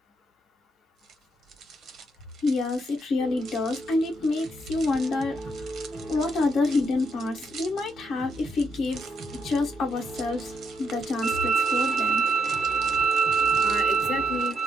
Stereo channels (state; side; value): normal; both; correlation 0.76